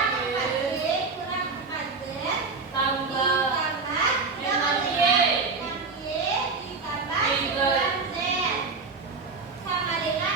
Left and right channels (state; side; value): quieter; left; 4.3 dB